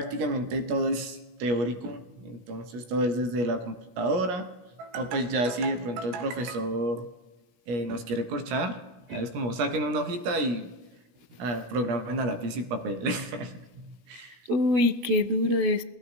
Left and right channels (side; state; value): left; late; 17 ms